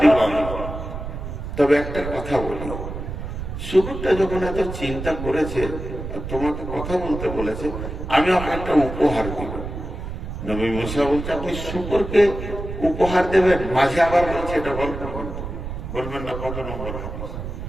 আমি। তবে একটা কথা বলি, শুকুরটা যখন এত চিন্তা করেছে, তোমাকে কথা বলতে বলেছে, আমি ওকে একটা উপহার দিব। নবী মুসা বলছে আপনি শুকরকে উপহার দেবেন, মাঝে আবার বলছে এটা গল্প করতে বলবেন না কত নম্বর হাদিস।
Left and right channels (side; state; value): right; noise; rumble, 7 dB below the sound